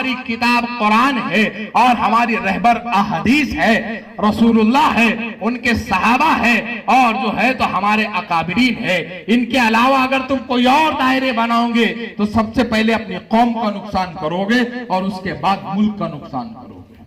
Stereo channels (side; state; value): both; identical; correlation 1.00